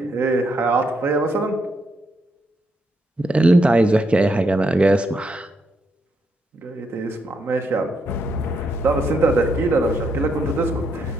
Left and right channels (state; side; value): normal; both; correlation 0.78